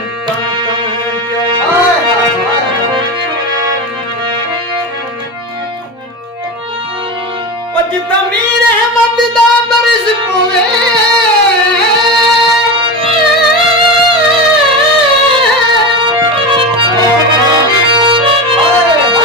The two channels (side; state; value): both; normal; correlation 0.22